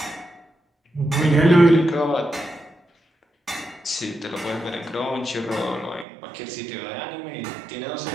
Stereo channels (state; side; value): drops out; left; at 6.1 s